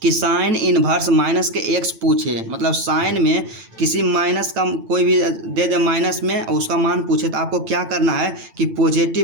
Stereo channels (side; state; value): left; late; 9.0 ms